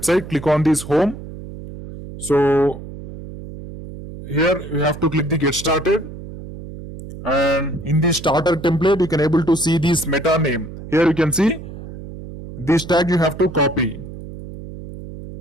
click on this home. So here you have to click the get started, and in the starter template you can able to see this meta name. Here you can see this tag you have to copy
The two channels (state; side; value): noise; right; hum, 12 dB below the sound